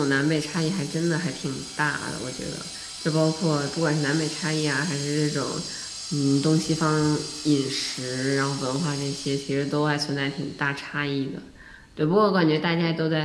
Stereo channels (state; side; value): identical; both; correlation 1.00